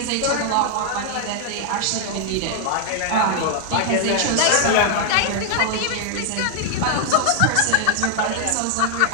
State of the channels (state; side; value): different; both; correlation 0.00